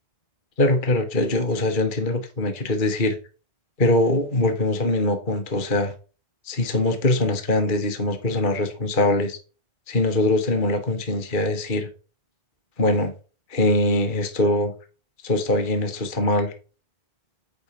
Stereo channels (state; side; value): late; right; 2.3 ms